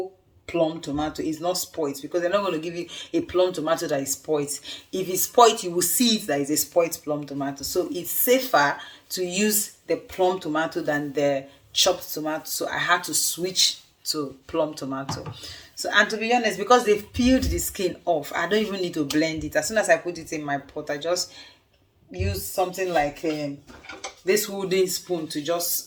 plum tomato. It's not spoiled, because they're not going to give you a plum tomato that is spoiled. If it's spoiled, you will see it that is a spoiled plum tomato. So it's safer to use the plum tomato than the chopped tomato. So I had to switch to plum tomato. So, and to be honest, because they've peeled the skin off, I don't even need to blend it. As soon as I put it in my pot, I just use something like this wooden spoon to just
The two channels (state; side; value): identical; both; correlation 1.00